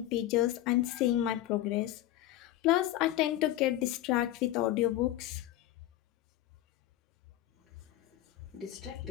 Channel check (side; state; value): right; quieter; 14.2 dB